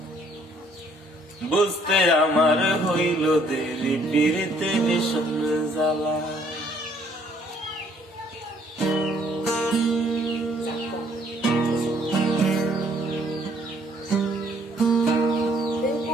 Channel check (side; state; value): both; normal; correlation 0.63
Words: বুঝতে আমার হইল দেরি পিরিতে ভীষণ জ্বালা।